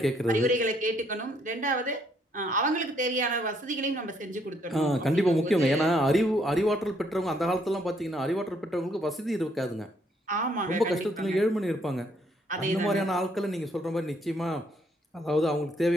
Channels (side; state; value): both; normal; correlation 0.70